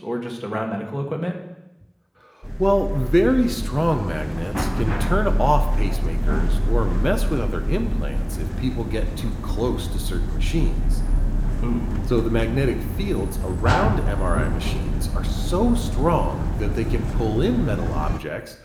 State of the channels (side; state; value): both; identical; correlation 1.00